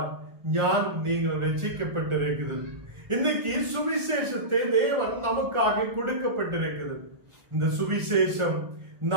ஞானம் நீங்கள் ரட்சிக்கப்பட்டிருக்கிறது. இன்னைக்கு சுவிசேஷத்தை தேவன் நமக்காக கொடுக்கப்பட்டிருக்கிறது. இந்த சுவிசேஷம்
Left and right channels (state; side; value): late; left; 1.4 ms